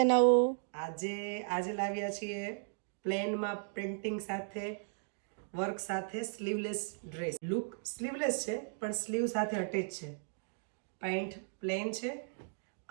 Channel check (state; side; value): silent; left; digital silence